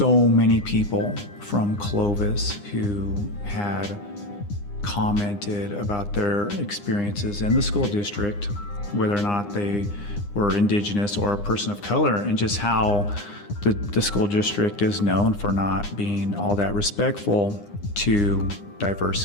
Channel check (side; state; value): right; late; 9.8 ms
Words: many people from Clovis who had commented about their experiences in the school district, whether or not they were Indigenous or a person of color, and just how the school district is known for not being all that respectful to